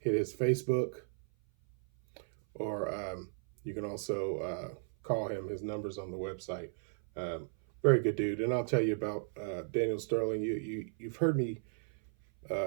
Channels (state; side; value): silent; left; 55 dB below the other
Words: his Facebook, or you can also call him. His number's on the website. Very good dude. And I'll tell you about Daniel Sterling. You've heard me